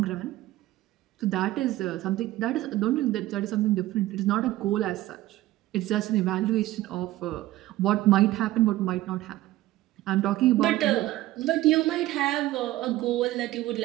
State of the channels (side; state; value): left; quieter; 16.1 dB